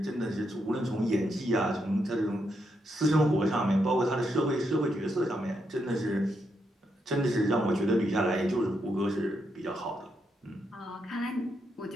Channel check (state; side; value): normal; both; correlation 0.81